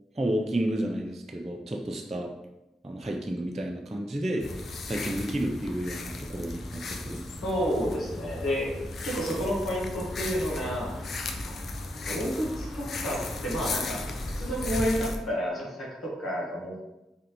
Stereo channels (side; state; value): both; normal; correlation 0.81